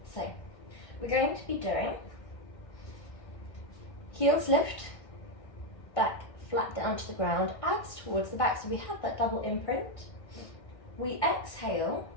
So we're going to be doing heels lift, back flat down to the ground, abs towards the back, so we have that double imprint. We exhale,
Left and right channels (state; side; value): late; right; 1.6 ms